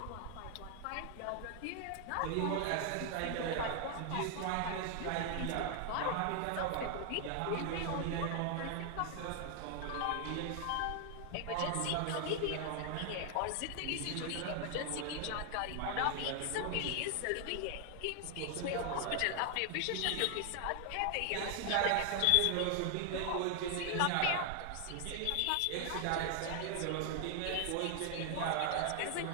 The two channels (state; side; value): different; both; correlation 0.00